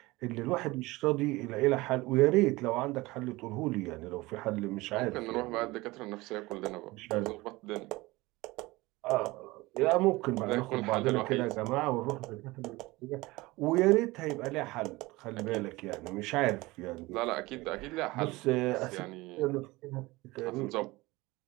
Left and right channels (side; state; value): left; quieter; 21.1 dB